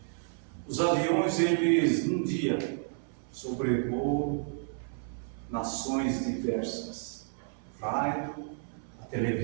os aviões, eles num dia sobrevoam nações diversas. Rádio, a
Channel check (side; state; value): left; silent; 57 dB below the other